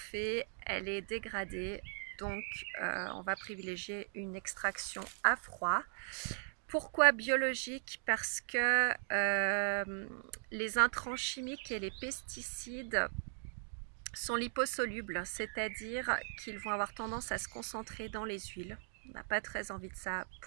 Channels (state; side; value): silent; left; digital silence